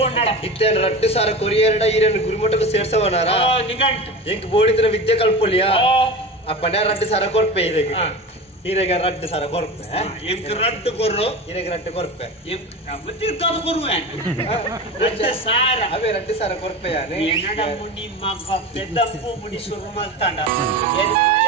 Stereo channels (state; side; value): normal; both; correlation 0.29